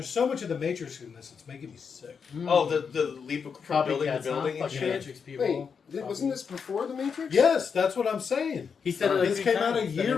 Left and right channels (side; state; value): right; quieter; 6.2 dB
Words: so much of The Matrix in this, it's making me sick. Oh, the leap from building to Copycats, building huh? and Fucking shit. Matrix people. Wait, wasn't this before The Matrix? Yes, that's what I'm saying. He said it like This 3 came out a times, that year